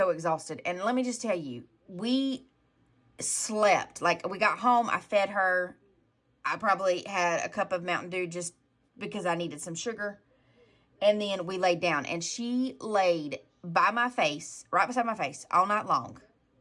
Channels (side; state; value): both; identical; correlation 1.00